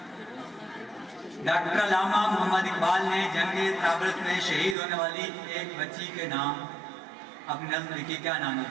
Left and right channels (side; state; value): left; drops out; at 4.8 s